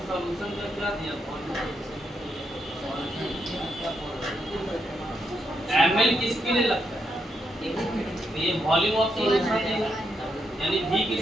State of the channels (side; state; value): both; normal; correlation 0.80